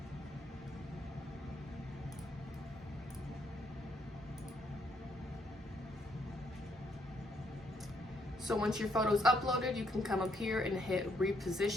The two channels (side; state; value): both; normal; correlation 0.73